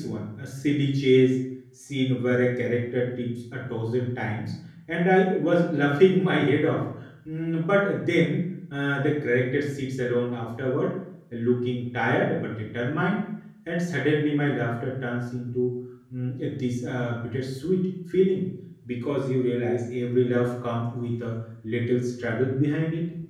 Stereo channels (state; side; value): identical; both; correlation 1.00